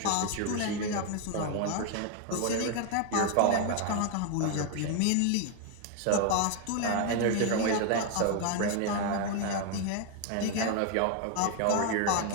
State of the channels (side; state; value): both; different; correlation 0.01